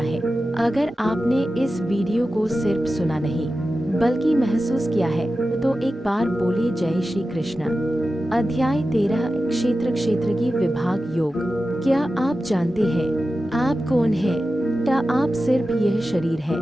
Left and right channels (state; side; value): normal; both; correlation 0.93